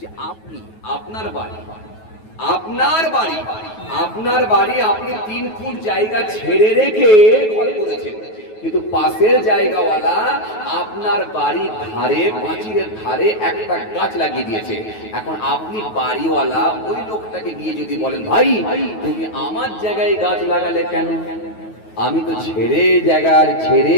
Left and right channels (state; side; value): late; right; 9.3 ms